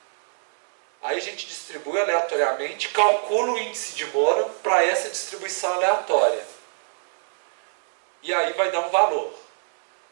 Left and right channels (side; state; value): left; silent; 63 dB below the other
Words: Aí a gente distribui aleatoriamente, calcula o índice de Moura para essa distribuição aleatória. E aí vai dar um valor.